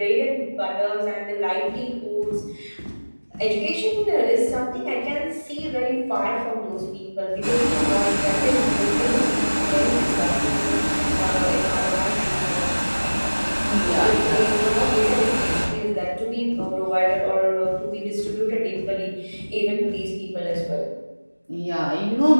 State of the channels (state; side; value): inverted; both; correlation -1.00